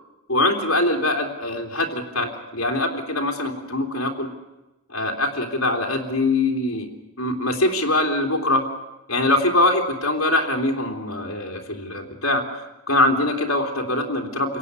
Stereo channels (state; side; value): normal; both; correlation 0.05